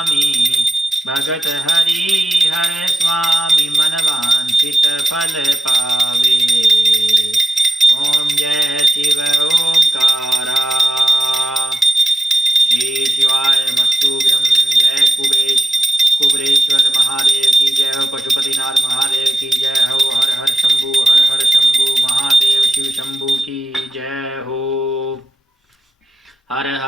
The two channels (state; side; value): normal; both; correlation 0.91